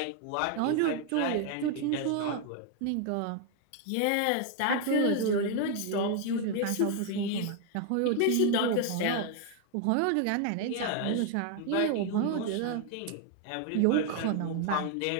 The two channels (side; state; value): both; different; correlation 0.00